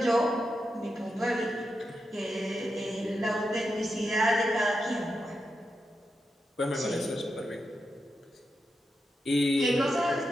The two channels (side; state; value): both; normal; correlation 0.87